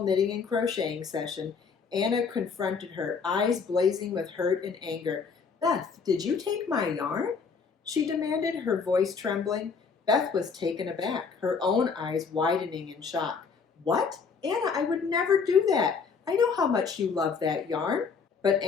knitting and crocheting session, Anna confronted her, eyes blazing with hurt and anger. "Beth, did you take my yarn?" she demanded, her voice trembling. Beth was taken aback, her own eyes widening in shock. "What? Anna, I would never do that. I know how much you love that yarn." But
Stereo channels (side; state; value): right; quieter; 5.5 dB